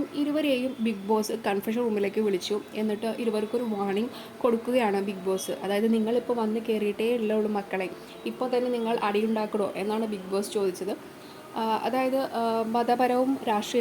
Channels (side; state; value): both; identical; correlation 1.00